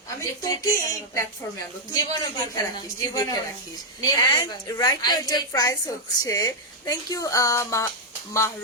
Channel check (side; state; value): both; normal; correlation -0.01